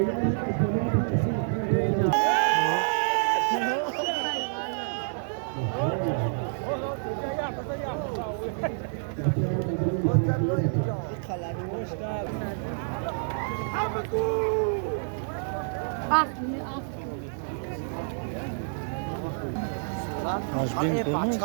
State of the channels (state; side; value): silent; left; 59 dB below the other